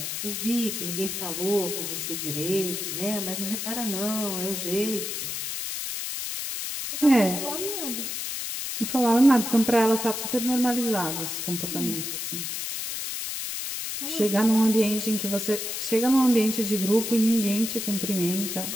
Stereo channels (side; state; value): left; noise; hiss, 4 dB below the sound